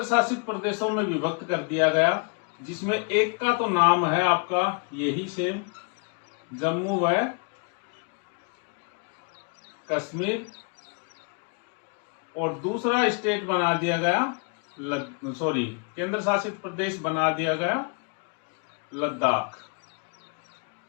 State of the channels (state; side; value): quieter; right; 37.6 dB